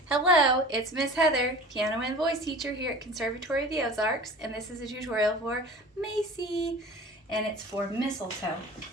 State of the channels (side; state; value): both; normal; correlation 0.40